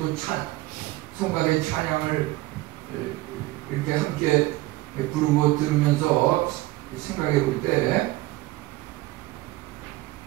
성가대 찬양을 이렇게 함께 부르고 들으면서 생각해 볼 때,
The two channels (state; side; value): quieter; left; 19.0 dB